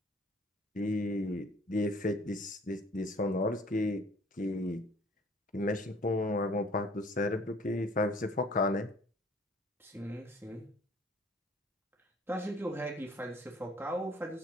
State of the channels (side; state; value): both; normal; correlation 0.54